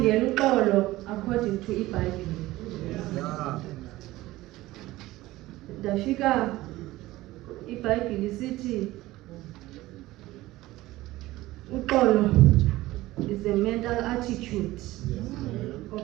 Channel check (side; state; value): left; quieter; 17.6 dB